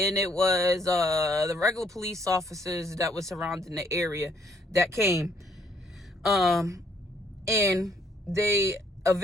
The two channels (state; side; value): normal; both; correlation 0.67